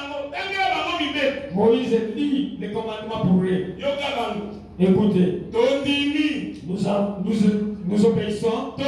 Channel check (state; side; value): identical; both; correlation 1.00